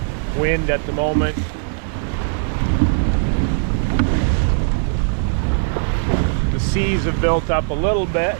wind at the moment. The seas have built up a little bit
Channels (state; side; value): silent; left; 62 dB below the other